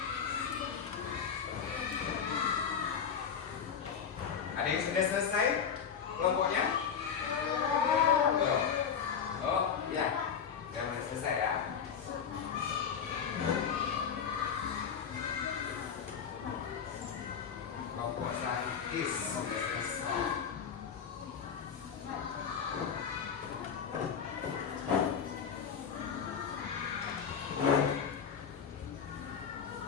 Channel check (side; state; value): right; quieter; 7.2 dB